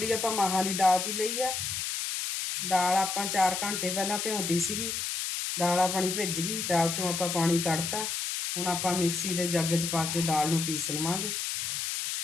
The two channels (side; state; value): left; noise; hiss, 2 dB below the sound